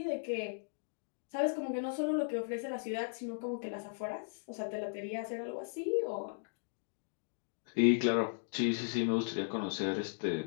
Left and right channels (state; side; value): silent; right; digital silence